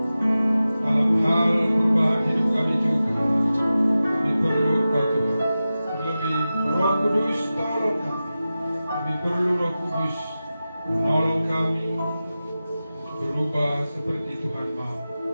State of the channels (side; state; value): both; inverted; correlation -0.94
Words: dalam hal perubahan hidup kami juga. Kami perlu Kau Tuhan. Terlebih Roh Kudus tolong kami. Kami perlu Roh Kudus menolong kami berubah seperti Tuhan mau.